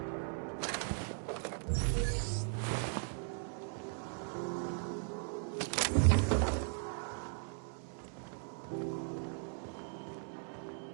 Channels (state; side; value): silent; left; 52 dB below the other